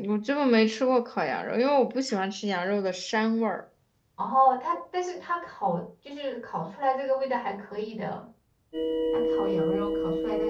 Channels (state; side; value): identical; both; correlation 1.00